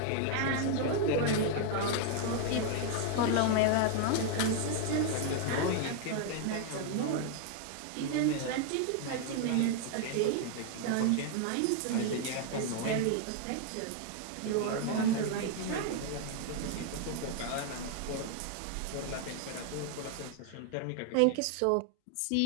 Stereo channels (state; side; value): different; both; correlation 0.00